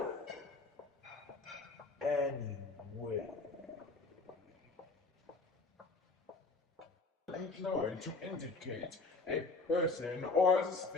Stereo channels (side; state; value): right; quieter; 3.7 dB